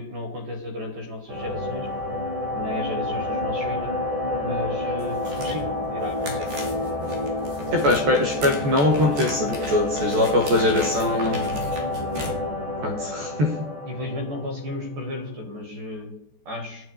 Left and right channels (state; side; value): late; left; 14 ms